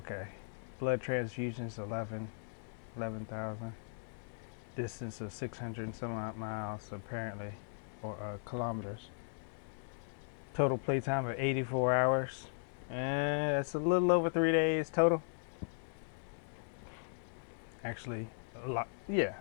Blood transfusions, 11,000. Distance of 600 and some odd miles, apparently, or kilometers. Total playtime of 84 hours. It's a little over 3 days total. Actually, a lot. Yeah,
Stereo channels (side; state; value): right; silent; digital silence